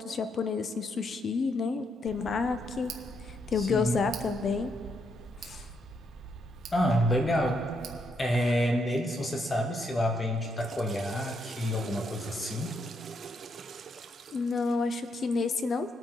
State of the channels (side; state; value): both; normal; correlation 0.77